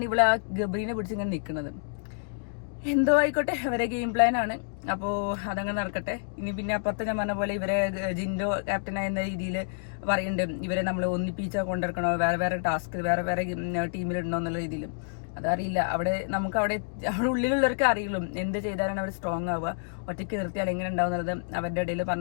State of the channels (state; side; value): silent; right; digital silence